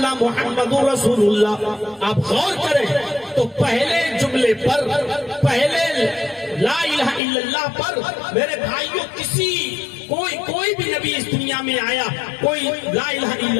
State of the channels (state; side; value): drops out; right; at 7.2 s